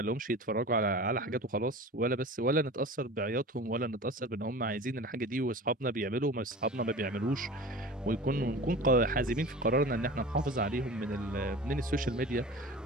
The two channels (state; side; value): normal; both; correlation 0.36